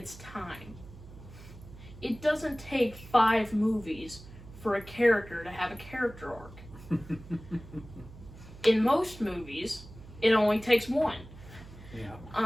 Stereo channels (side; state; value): right; noise; hum, 17 dB below the sound